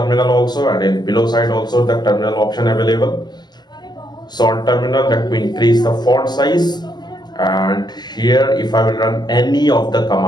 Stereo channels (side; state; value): right; late; 0.21 ms